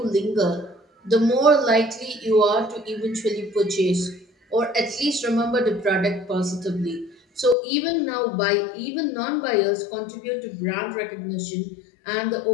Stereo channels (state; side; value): drops out; right; at 7.6 s